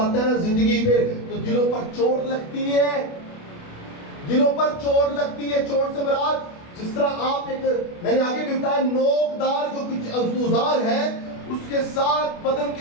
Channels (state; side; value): late; right; 28 ms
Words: ہے نا زندگی پہ تو دلوں پر چوٹ لگتی ہے، دلوں پر چوٹ لگتی ہے۔ چوٹ سے مراد جس طرح آپ میں نے آگے بھی بتایا، نوکدار جو کچھ اوزار ہے اس کے ساتھ بدن